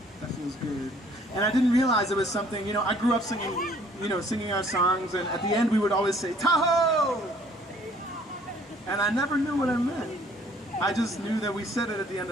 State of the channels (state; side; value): normal; both; correlation 0.59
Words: that feels good. And I didn't realize it was something, you know, I grew up singing, singing our songs, and at the end we would always say, Tahoe! And I never knew what I meant. I just knew that we said it at the end